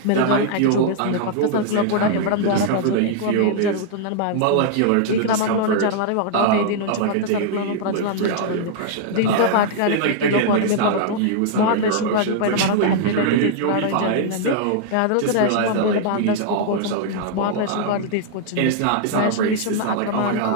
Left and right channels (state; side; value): different; both; correlation -0.01